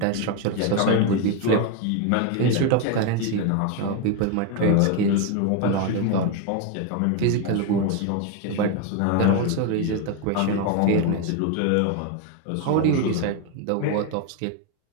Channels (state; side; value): different; both; correlation 0.02